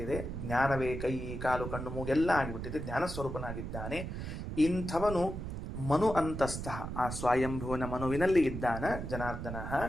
ಜ್ಞಾನವೇ ಕೈ ಕಾಲು ಕಣ್ಣು ಮೂಗೆಲ್ಲ ಆಗಿಬಿಟ್ಟಿದೆ. ಜ್ಞಾನ ಸ್ವರೂಪನಾಗಿದ್ದಾನೆ. ಇಂಥವನು ಮನು ಅಂತಸ್ಥ. ಆ ಸ್ವಯಂಭುವನ ಮನುವಿನಲ್ಲಿ ಇದ್ದಾನ ಜನಾರ್ದನ.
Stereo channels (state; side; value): noise; right; rumble, 6 dB below the sound